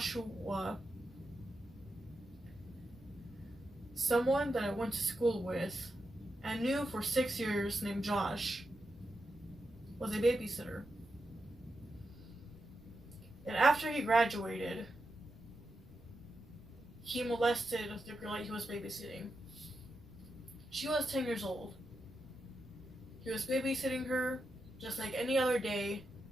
was a babysitter. And after he graduated, he molested the girl that he was babysitting. She was 10 years old. He was babysitting her just like any other day,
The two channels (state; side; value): noise; right; rumble, 22 dB below the sound